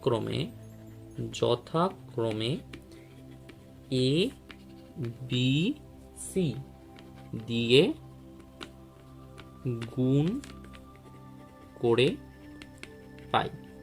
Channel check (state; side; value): identical; both; correlation 1.00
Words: এ বি সি দিয়ে গুণ করে পাই।